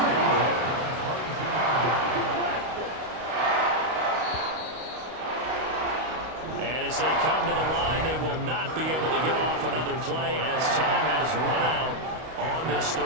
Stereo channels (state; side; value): late; left; 32 ms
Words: And as they come to the line, they will not be able to get off another play as time has run out on this